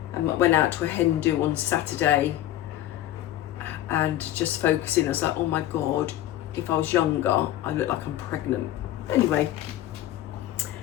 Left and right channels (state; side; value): quieter; right; 13.6 dB